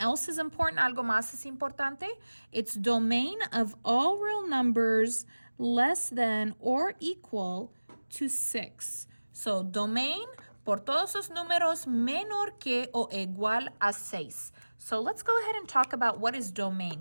is important, algo más es importante. It's domain of all real numbers less than or equal to 6. So domain por todos los números menor que o igual a 6. So let's go ahead and talk about what is domain.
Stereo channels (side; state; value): both; inverted; correlation -1.00